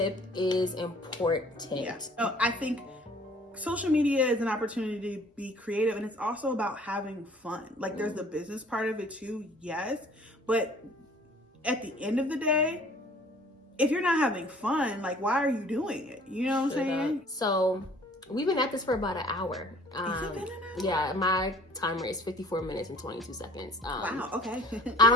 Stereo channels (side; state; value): both; normal; correlation 0.52